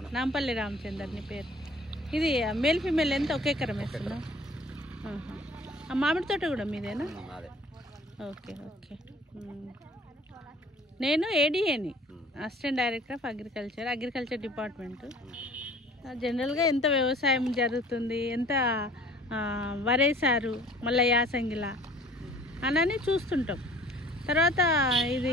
నాంపల్లి రామచందర్ నీ పేరు. ఇది మేల్ ఫీమేల్ ఎంత ఒక ఎకరం వేస్తున్నావు? ఆ మామిడి తోట కూడా మీదేనా? Okay okay. నేను ఏడీఏని, assistant director of agriculture department. జనరల్గా ఎంత వ్యవసాయం జరుగుతుంది, ఎంత వరేసారు, మళ్ళీ యాసంగిలా అని చూస్తుంటాం. తర్వాత ఇది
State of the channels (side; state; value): both; normal; correlation 0.50